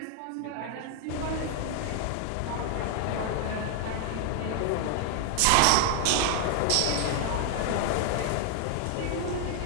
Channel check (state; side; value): different; both; correlation 0.00